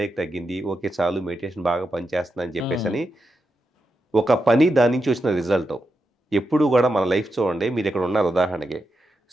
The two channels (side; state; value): both; normal; correlation 0.87